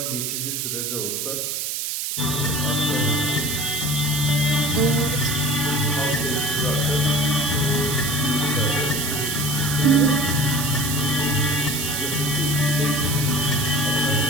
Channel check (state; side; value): noise; right; hiss, 2 dB below the sound